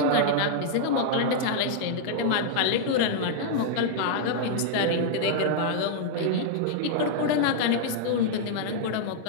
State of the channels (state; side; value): different; both; correlation -0.01